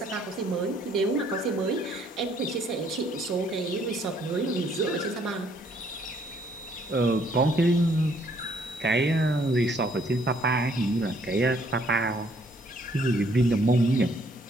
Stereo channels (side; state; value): both; normal; correlation 0.65